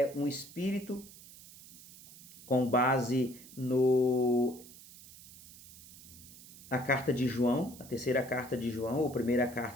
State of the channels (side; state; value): right; noise; hiss, 19 dB below the sound